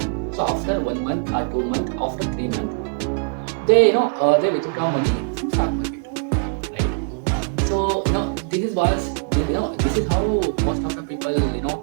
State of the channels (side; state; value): left; quieter; 39.4 dB